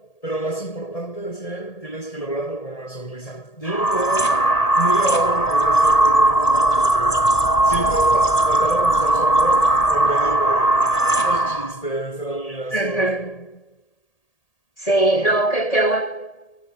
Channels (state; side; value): late; right; 1.8 ms